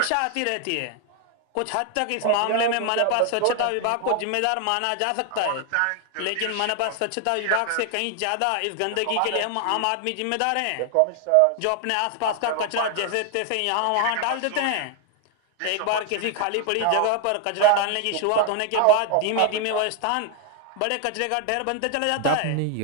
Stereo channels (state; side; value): different; both; correlation 0.00